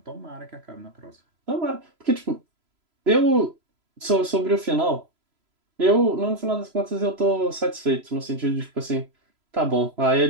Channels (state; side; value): late; left; 3.0 ms